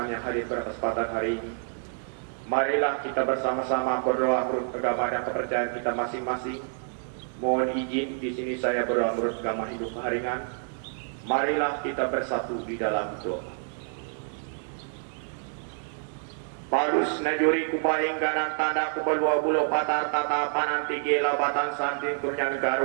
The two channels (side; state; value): left; silent; 59 dB below the other